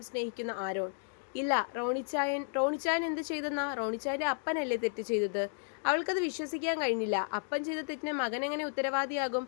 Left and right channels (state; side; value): silent; right; digital silence